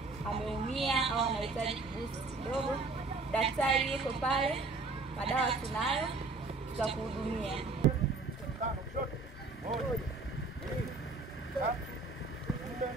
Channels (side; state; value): left; quieter; 3.7 dB